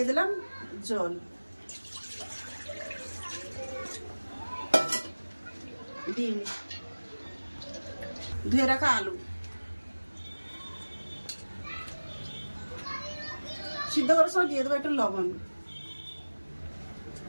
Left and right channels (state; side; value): inverted; both; correlation -1.00